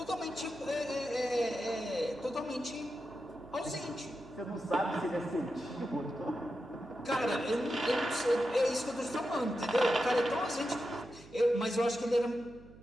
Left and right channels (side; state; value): right; noise; hum, 20 dB below the sound